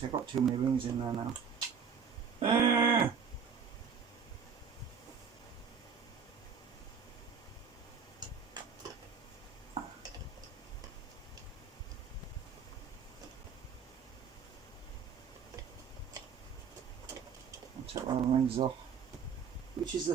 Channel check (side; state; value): left; quieter; 6.5 dB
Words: I've got too many rings in there now. Take one of the rings off. Which is